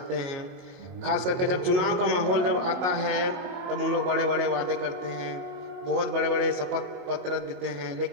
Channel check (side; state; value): left; late; 22 ms